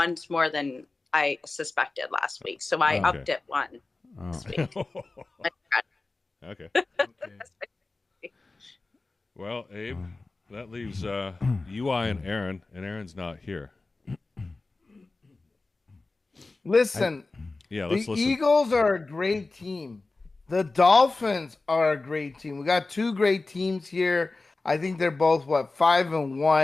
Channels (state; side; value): quieter; right; 3.4 dB